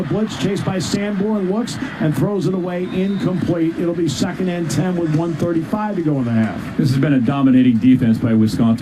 blitz. Chased by Sanborn. Looks and throws it away. Incomplete. It'll be 2nd and 10 with 1:35 to go in the half. This has been a dominating defense by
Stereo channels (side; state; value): both; identical; correlation 1.00